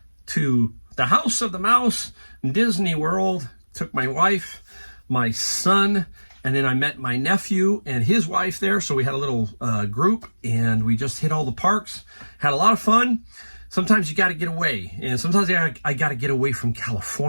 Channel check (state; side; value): inverted; both; correlation -1.00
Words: to the House of the Mouse, Disney World, took my wife, my son, and then I met my nephew and his wife there. So we had a little group, and we just hit all the parks, had a lot of fun. Sometimes you got to get away, and sometimes I got to get away from